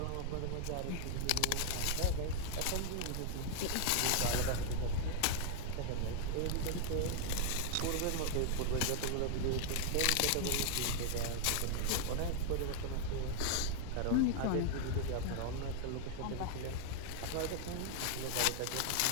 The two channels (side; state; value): both; different; correlation 0.00